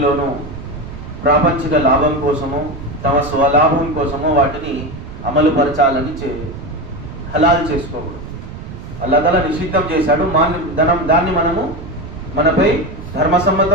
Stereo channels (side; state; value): right; noise; rumble, 12 dB below the sound